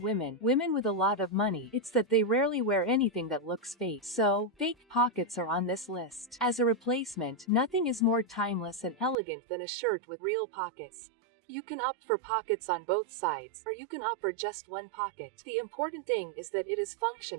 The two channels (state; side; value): drops out; left; at 9.2 s